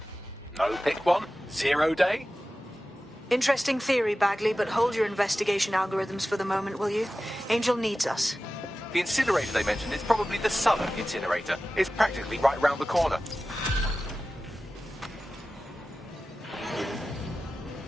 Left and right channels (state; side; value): normal; both; correlation 0.95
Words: No, pick one. 0 Day? Interesting theory, Bagley, but hold your investigation algorithms for the moment, will you? Angel needs us. The incinerator they mentioned is probably the southern incinerator. It's practically right round the corner.